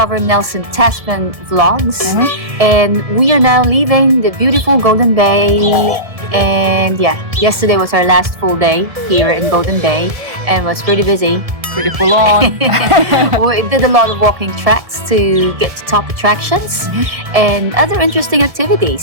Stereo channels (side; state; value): left; late; 1.7 ms